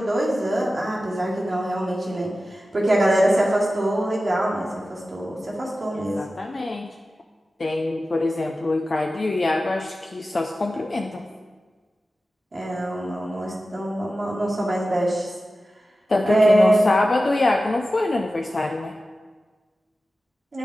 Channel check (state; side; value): normal; both; correlation 0.94